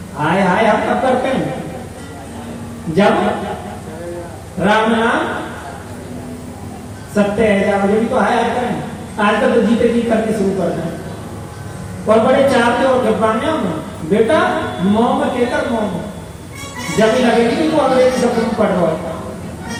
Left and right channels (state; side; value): identical; both; correlation 1.00